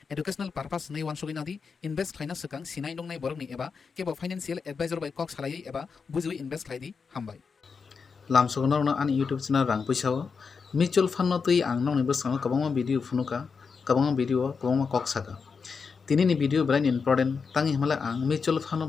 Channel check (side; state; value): right; quieter; 5.4 dB